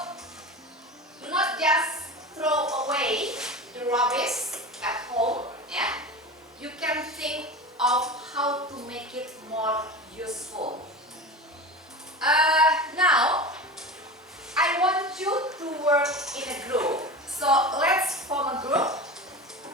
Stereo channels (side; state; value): both; normal; correlation 0.29